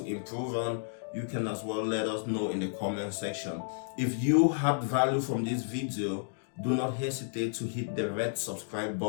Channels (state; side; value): silent; right; digital silence